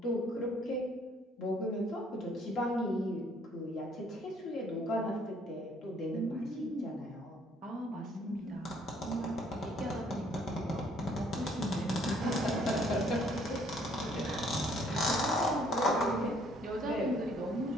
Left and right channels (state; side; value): normal; both; correlation 0.63